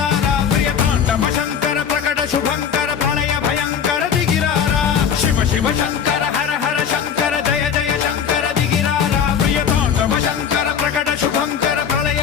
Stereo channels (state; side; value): quieter; right; 7.6 dB